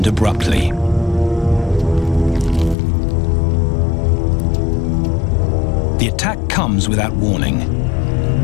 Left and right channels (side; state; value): right; drops out; at 2.8 s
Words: abruptly. The attack comes without warning.